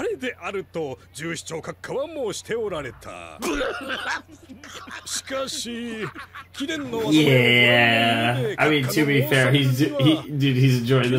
れであると従司長閣下は申しておられた。しかし、貴殿の Yeah, I mean, to be fair, he's enjoying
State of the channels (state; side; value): identical; both; correlation 1.00